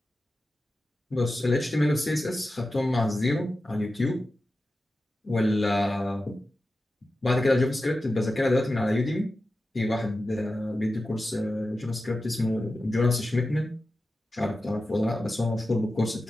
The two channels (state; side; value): normal; both; correlation 0.93